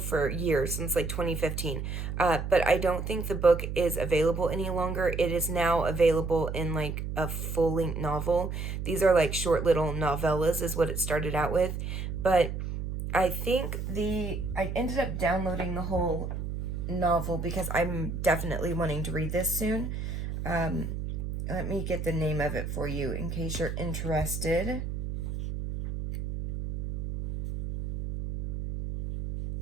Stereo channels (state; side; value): noise; right; hum, 4 dB below the sound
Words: years, since like 2015. But I don't think the book is available any longer. It is now available in like a full-length novel. These are like short little novellas is what it started out with. But I think I ended up downloading the whole novel because I'm definitely wanting to read this soon. Let me get the name of it for you in case you're interested.